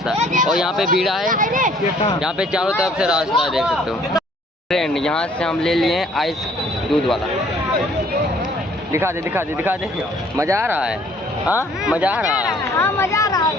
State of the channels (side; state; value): both; normal; correlation 0.59